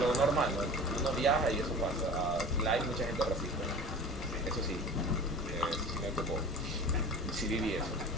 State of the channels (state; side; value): normal; both; correlation 0.38